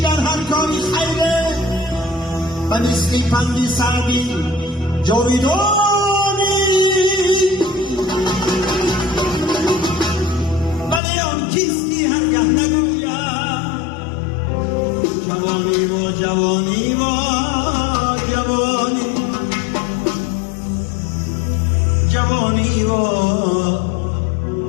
در هر کاری خیره و مثل پندی سعدی جاویدانی، ولی آن کیستی هرگه نگوید جوانی و جوانی و جوانی. جوانی و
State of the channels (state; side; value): drops out; right; at 11.0 s